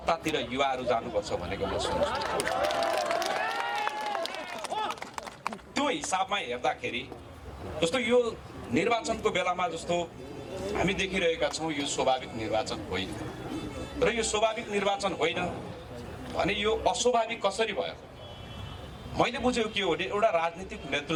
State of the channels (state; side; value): identical; both; correlation 1.00